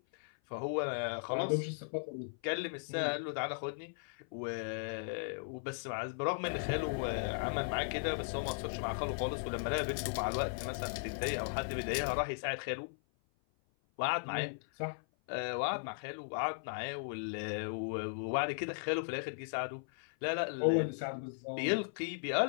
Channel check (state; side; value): silent; right; 53 dB below the other